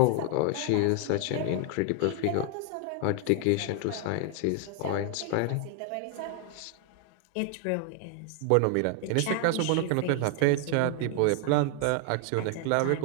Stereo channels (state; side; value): different; both; correlation 0.00